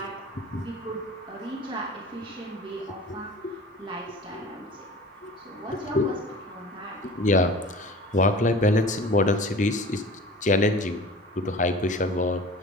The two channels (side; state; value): both; normal; correlation 0.41